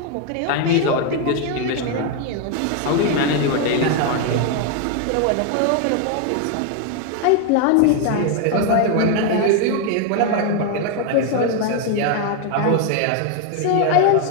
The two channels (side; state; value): both; different; correlation 0.01